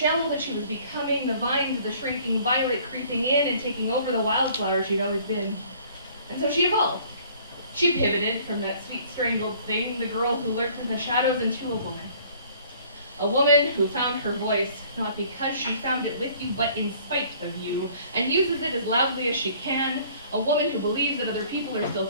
that she was becoming, the vines of the shrinking violet creeping in and taking over the wildflower she'd always been. And so she evolved. She pivoted from that sweet strangled thing, the girl who lurked in the shadows, into a woman. A woman who found her voice, not because she found it with you, but in spite of you, and uses it as loudly as she can. A woman who believes that other people are still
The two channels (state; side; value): inverted; both; correlation -0.55